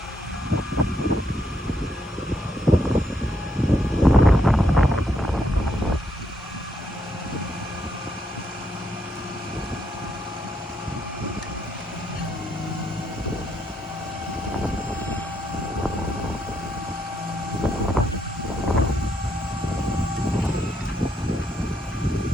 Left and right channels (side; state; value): both; normal; correlation 0.76